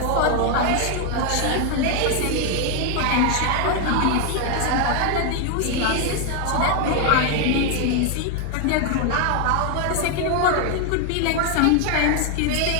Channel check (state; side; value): different; both; correlation 0.01